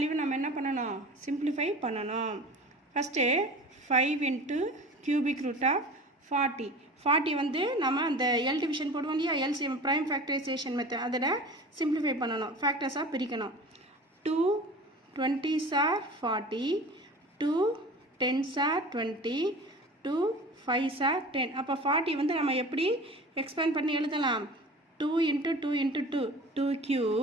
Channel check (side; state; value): both; normal; correlation 0.38